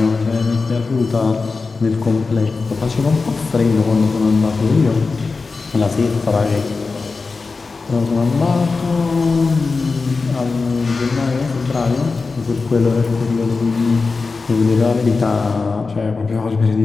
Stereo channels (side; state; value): right; quieter; 4.2 dB